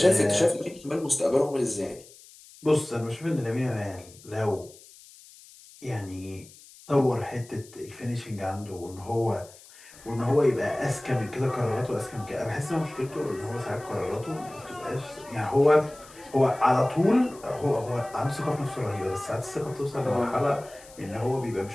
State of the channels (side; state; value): left; noise; hiss, 22 dB below the sound